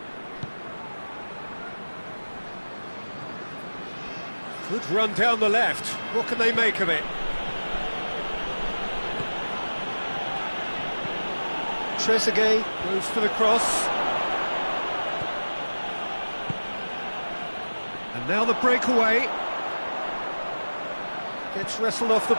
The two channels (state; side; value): inverted; both; correlation -1.00